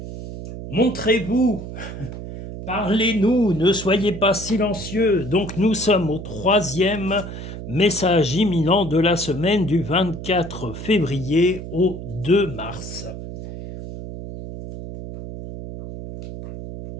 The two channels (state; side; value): noise; right; hum, 10 dB below the sound